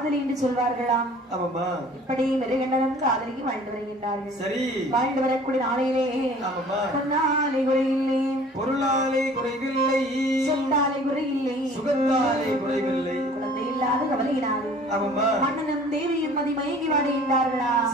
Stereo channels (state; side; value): normal; both; correlation 0.49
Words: என்று சொல்வார்களாம். இப்படி மிருகண்டனும் காதலிக்கு வாழ்ந்து வருகின்றார்கள். சரி, வாழ்ந்து வரக்கூடிய நாளையிலே பொன்னாலை குறையில்லை, பொருளாலை குறைவில்லை, சொத்தாலை குறையில்லை, சுகத்தாலை குறைவில்லை, குழந்தை இல்லாத கவலையினாலும் மன்னனும் தேவியும் மதி மயங்கி வாடுகின்றார்களா?